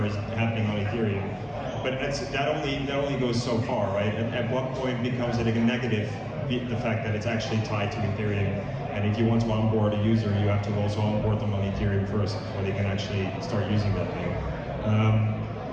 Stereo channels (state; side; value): identical; both; correlation 1.00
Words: is happening on Ethereum. But that only goes so far, right? At what point becomes it a negative, the fact that it's actually tied to Ethereum? And if you want to onboard a user, you have to also onboard them on Ethereum first before they can actually start using that thing.